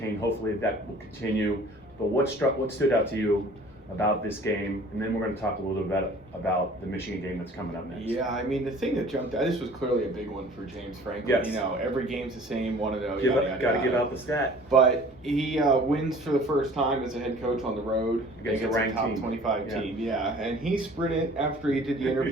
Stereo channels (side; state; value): both; normal; correlation 0.48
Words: Hopefully that will continue. But what stood out to you about this game? And then we're going to talk a little bit about the Michigan game that's coming up next. Yeah, I mean, the thing that jumped out, this was clearly a big one for James Franklin. Yes. You know, every game's the same, got to give out the stat. But he wins for the first time as a head coach on the road against a ranked top team. 25 team. Yeah, and he sprinted, after he did the